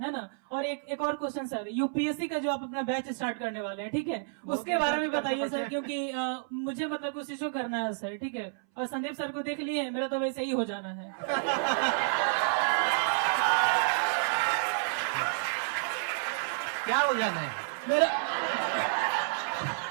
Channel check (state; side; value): silent; left; 58 dB below the other